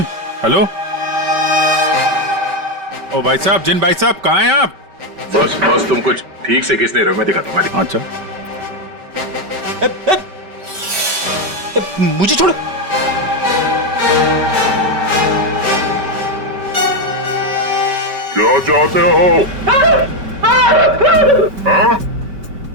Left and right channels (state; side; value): late; left; 5.2 ms